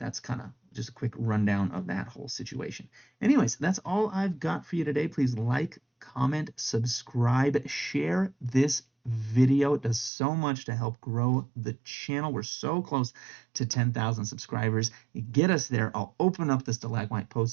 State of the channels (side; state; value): left; drops out; at 10.1 s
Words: kind of just a quick rundown of that whole situation. Anyways, that's all I've got for you today. Please like, comment, subscribe, share this video. It does so much to help grow the channel. We're so close to 10,000 subscribers. You get us there, I'll open up the stalagmite